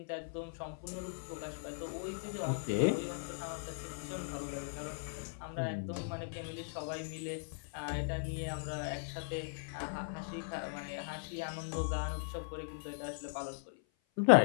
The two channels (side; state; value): right; silent; 52 dB below the other